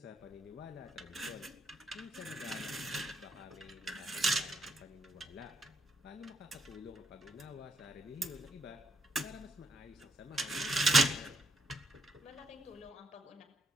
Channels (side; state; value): both; normal; correlation 0.75